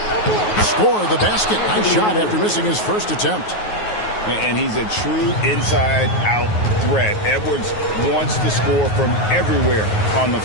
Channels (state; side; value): late; right; 9.4 ms